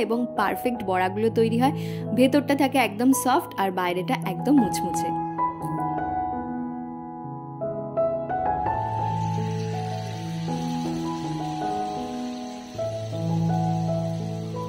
এবং পারফেক্ট বড়াগুলো তৈরি হয়। ভেতরটা থাকে একদম সফট আর বাইরেটা একদম মুচমুচে।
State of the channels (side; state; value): both; identical; correlation 1.00